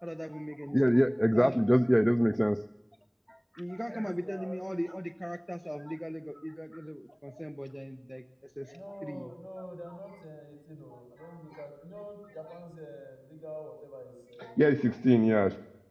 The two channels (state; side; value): identical; both; correlation 1.00